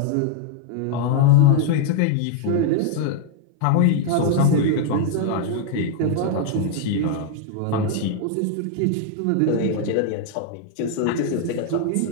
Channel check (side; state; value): both; different; correlation 0.00